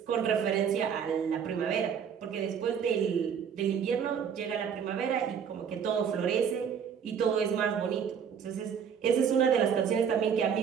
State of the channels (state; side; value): quieter; left; 7.5 dB